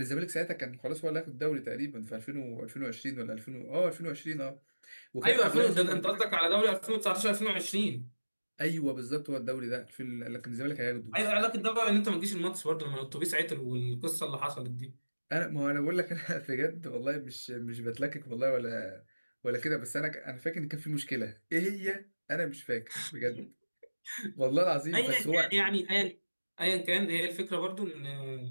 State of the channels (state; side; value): inverted; both; correlation -1.00